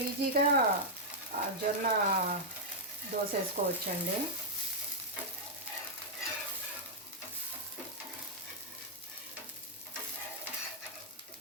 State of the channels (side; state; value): both; normal; correlation -0.06